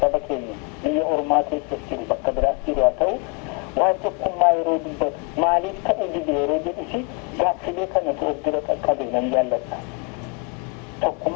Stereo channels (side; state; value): right; quieter; 33.8 dB